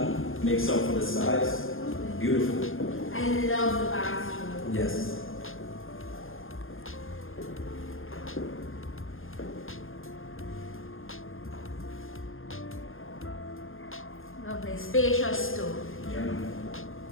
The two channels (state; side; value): late; right; 0.59 ms